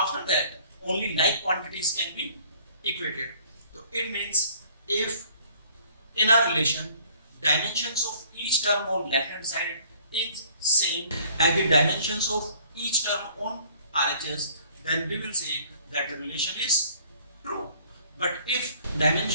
that only like quantities can be equated. So it means if in a relation dimensions of each term on left hand side is same as the dimensions of each term on RHS, then we will say that the relation is true. But if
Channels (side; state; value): both; inverted; correlation -0.56